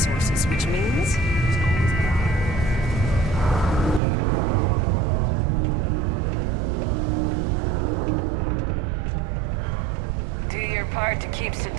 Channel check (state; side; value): drops out; left; at 4.0 s